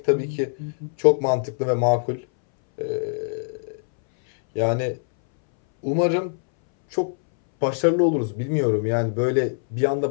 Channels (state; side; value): silent; right; 62 dB below the other